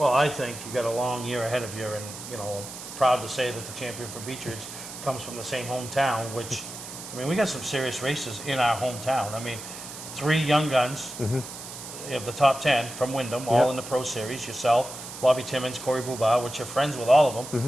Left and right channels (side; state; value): right; noise; hiss, 11 dB below the sound